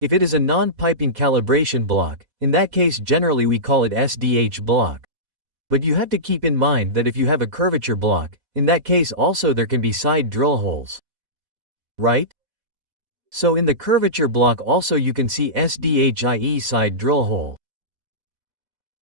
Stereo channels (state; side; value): late; left; 4.1 ms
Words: it is a non-piping calibration block, in that case generally we call it SDH block. But you have to keep in mind that if you have a curvature block, in that case also there can be side drill holes. Right? So in the curvature block also you can see SDHIE side drill hole.